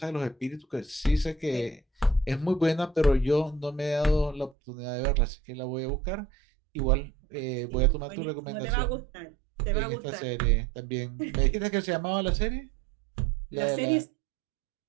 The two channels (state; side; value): drops out; left; at 4.5 s